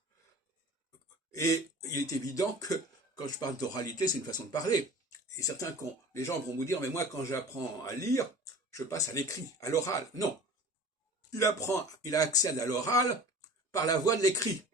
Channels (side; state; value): both; normal; correlation 0.41